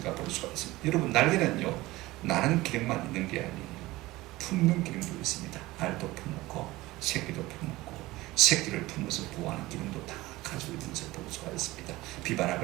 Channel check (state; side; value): quieter; left; 19.0 dB